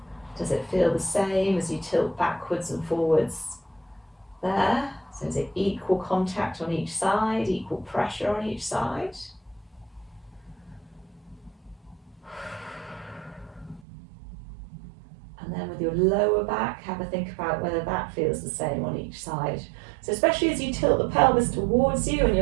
Does it feel the same as you tilt backwards and forwards there? So is it equal contact on each side, equal pressure on each side? And then with your lower back, have a think about whether that feels the same on each side. So especially as you tilt the pelvis towards you and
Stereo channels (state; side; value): drops out; left; at 13.8 s